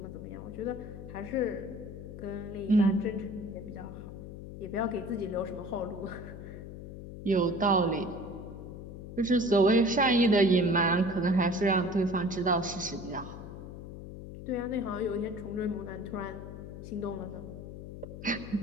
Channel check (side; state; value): left; noise; hum, 11 dB below the sound